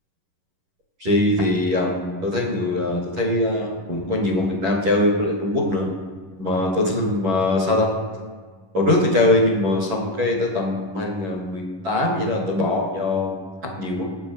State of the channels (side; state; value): left; late; 11 ms